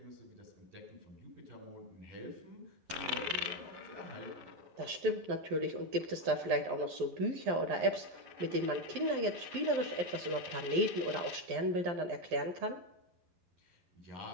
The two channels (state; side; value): late; left; 11 ms